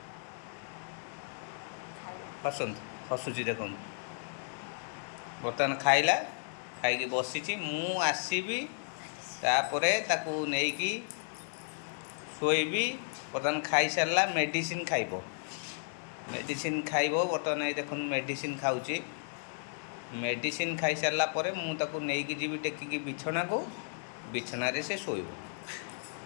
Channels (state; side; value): silent; right; 55 dB below the other